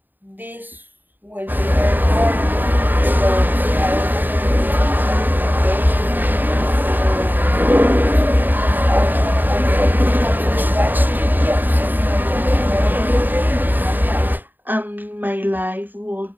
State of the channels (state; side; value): late; left; 0.090 ms